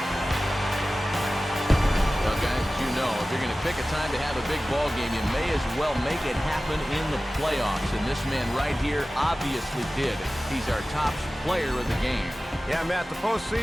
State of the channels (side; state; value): both; normal; correlation 0.96